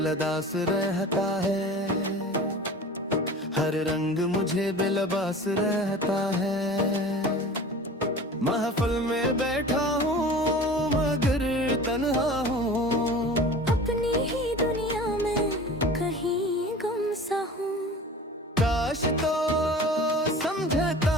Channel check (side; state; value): both; normal; correlation 0.39